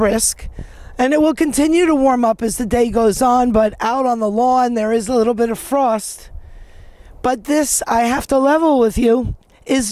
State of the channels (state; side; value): identical; both; correlation 1.00